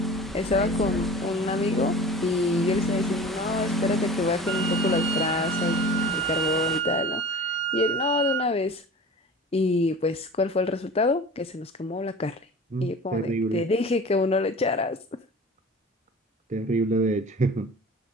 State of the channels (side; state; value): both; normal; correlation 0.38